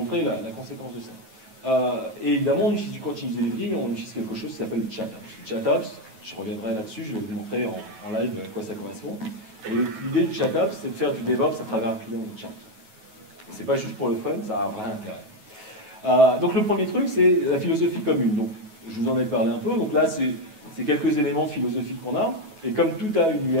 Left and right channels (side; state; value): left; late; 9.3 ms